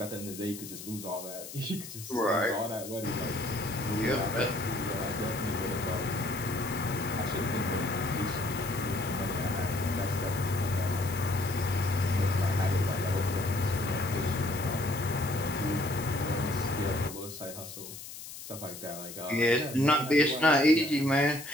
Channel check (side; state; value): left; noise; hiss, 12 dB below the sound